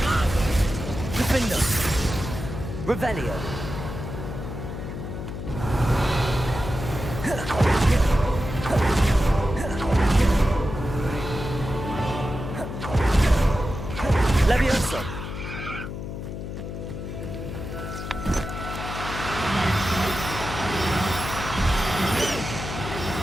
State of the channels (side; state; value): left; noise; hum, 7 dB below the sound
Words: Defendo. Revelio. Levioso.